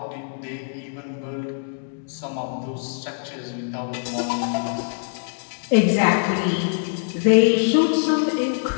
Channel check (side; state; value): right; silent; digital silence